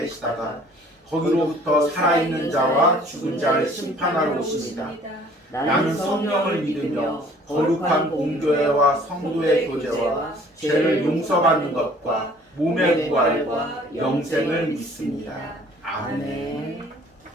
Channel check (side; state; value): both; normal; correlation 0.54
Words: 거기로부터 살아있는 자와 죽은 자를 심판하러 오십니다. 나는 성령을 믿으며 거룩한 공교회와 성도의 교제와 죄를 용서받는 것과 몸의 부활과 영생을 믿습니다. 아멘.